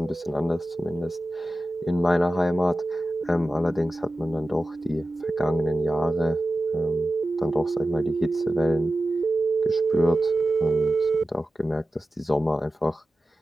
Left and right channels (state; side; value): normal; both; correlation 0.94